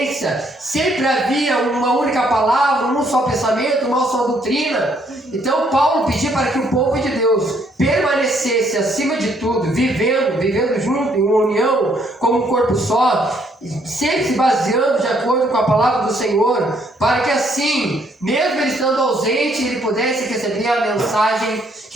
sempre havia uma única palavra, um só pensamento, uma só doutrina. Então Paulo pedia para que o povo de Deus permanecesse acima de tudo, vivendo junto, em uma união, como um corpo só, sempre se baseando de acordo com a palavra do Senhor, para que assim, mesmo ele estando ausente, ele pudesse receber a mensagem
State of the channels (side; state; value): both; normal; correlation 0.68